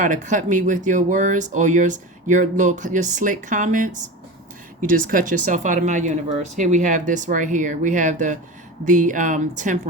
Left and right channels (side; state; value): both; normal; correlation 0.28